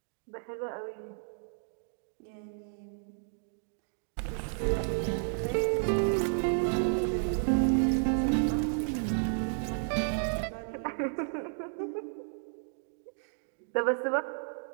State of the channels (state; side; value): silent; left; digital silence